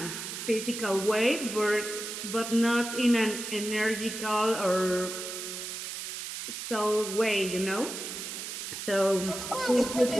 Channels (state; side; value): noise; right; hiss, 7 dB below the sound